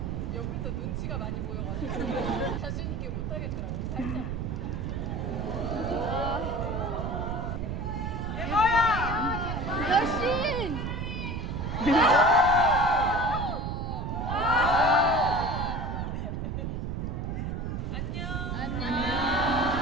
옆에서 눈치가 많이 보여가지고 자신 있게 못 하겠더라고요. 살짝. 여신!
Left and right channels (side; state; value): right; noise; rumble, 3 dB below the sound